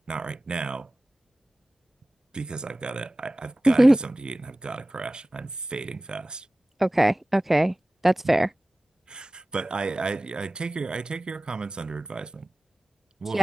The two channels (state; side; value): normal; both; correlation 0.97